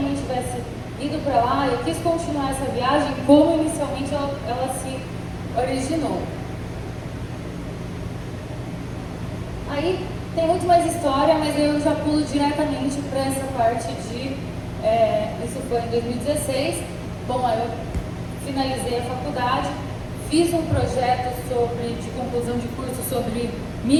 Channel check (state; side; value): identical; both; correlation 1.00